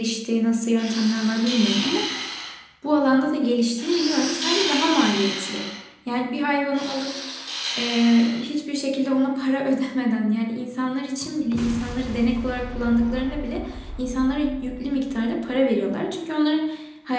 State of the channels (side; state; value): both; identical; correlation 1.00